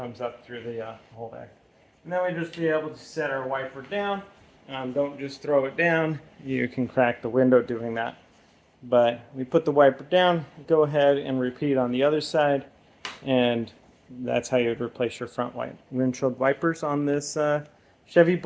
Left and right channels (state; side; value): identical; both; correlation 1.00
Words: up through the hole there. And then we just be able to set our wiper down. Don't just throw it down. You can crack the window doing that. But we put the wiper down, go ahead and repeat on the other side, and that's how you would replace your front windshield wipers on this Chevy